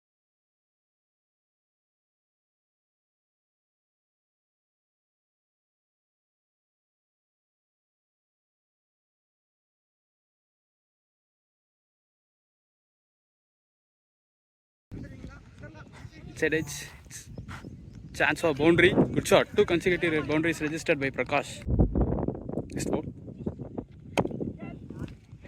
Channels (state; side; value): identical; both; correlation 1.00